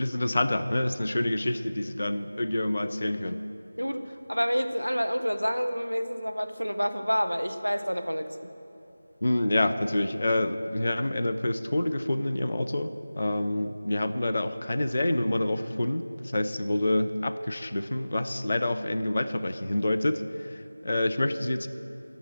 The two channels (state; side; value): inverted; both; correlation -0.97